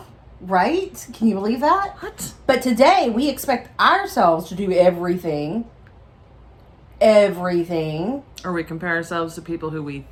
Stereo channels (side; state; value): both; identical; correlation 1.00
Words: Right? Can you believe that? What? But today, we expect ourselves to do everything. Or we compare ourselves to people who we